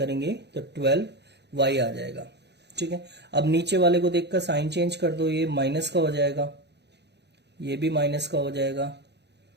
तो 12y आ जाएगा। ठीक है, अब नीचे वाले को देखकर साइन चेंज कर दो, ये माइनस का हो जाएगा, ये भी माइनस का हो जाएगा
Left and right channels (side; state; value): left; late; 0.50 ms